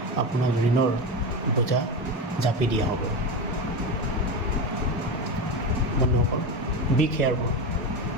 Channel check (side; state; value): both; normal; correlation 0.20